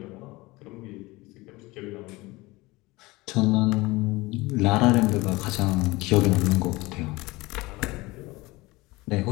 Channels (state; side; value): quieter; right; 21.7 dB